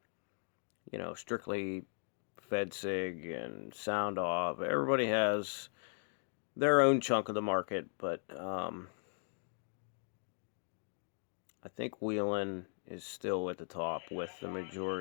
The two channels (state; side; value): silent; right; 52 dB below the other